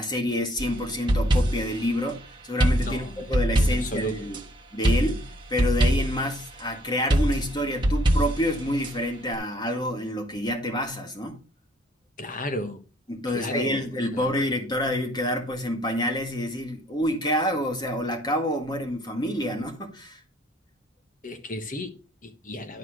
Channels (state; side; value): normal; both; correlation 0.63